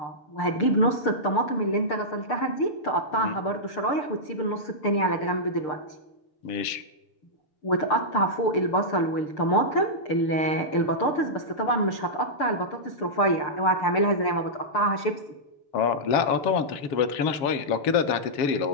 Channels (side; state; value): right; late; 6.8 ms